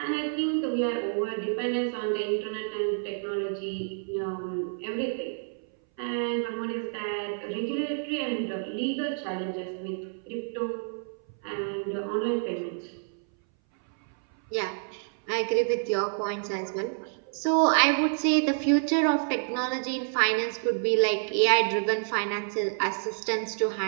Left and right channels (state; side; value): silent; left; 59 dB below the other